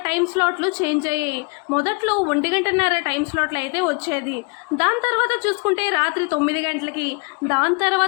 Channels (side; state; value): right; quieter; 33.7 dB